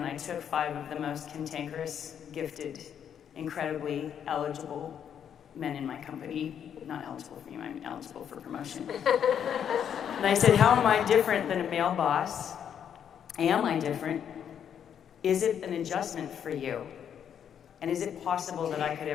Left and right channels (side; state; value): right; quieter; 8.6 dB